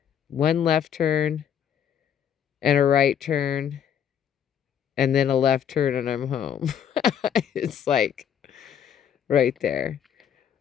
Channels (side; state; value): right; quieter; 8.7 dB